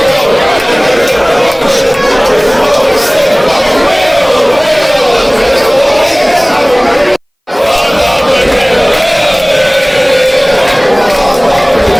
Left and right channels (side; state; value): both; identical; correlation 1.00